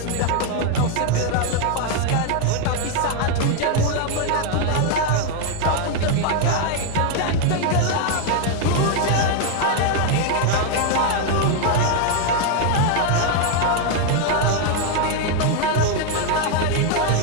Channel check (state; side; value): different; both; correlation 0.01